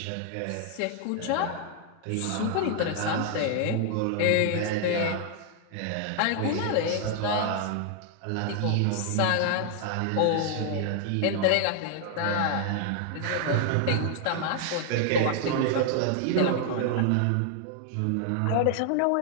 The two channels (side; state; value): both; different; correlation 0.00